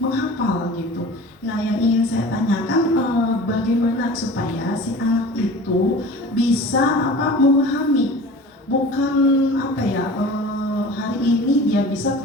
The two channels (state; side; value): normal; both; correlation 0.39